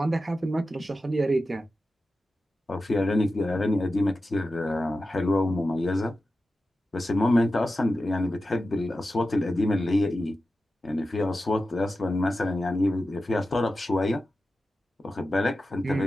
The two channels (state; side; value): normal; both; correlation 0.92